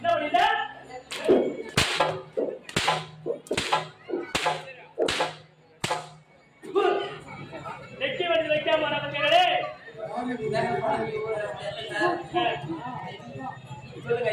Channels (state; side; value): identical; both; correlation 1.00